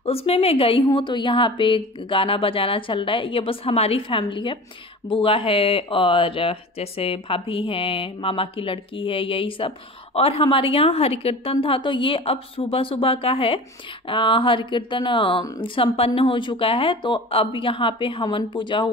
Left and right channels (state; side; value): normal; both; correlation 0.36